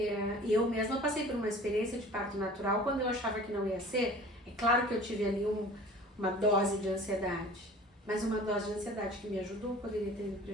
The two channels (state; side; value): normal; both; correlation 0.44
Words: eu mesma passei por uma experiência de parto natural quando eu achava que não ia ser. É claro que eu tive ali uma dose de ansiedade, mas uma dose de ansiedade que me ajudou poderia ter me